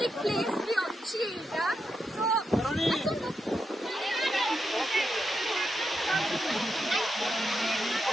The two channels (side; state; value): both; normal; correlation 0.85